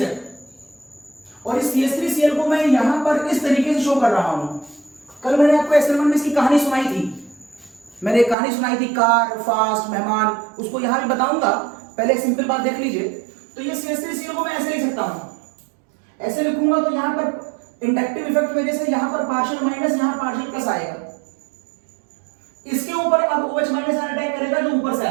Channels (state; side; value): drops out; left; at 8.3 s